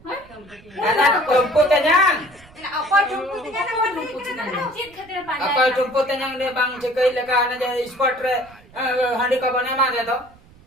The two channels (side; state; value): right; noise; rumble, 25 dB below the sound